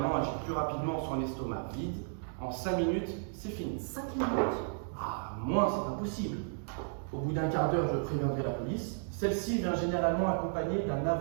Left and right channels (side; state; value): left; silent; digital silence